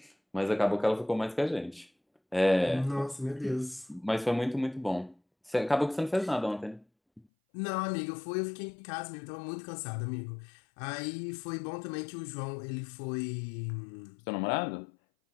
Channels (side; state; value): right; drops out; at 7.2 s